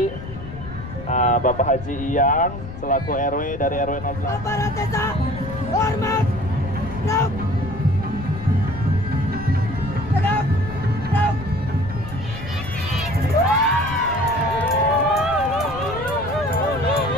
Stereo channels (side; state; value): left; noise; rumble, 11 dB below the sound